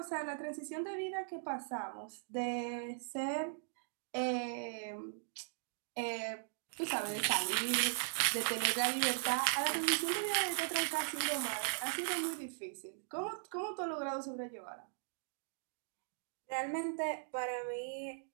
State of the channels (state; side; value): silent; left; digital silence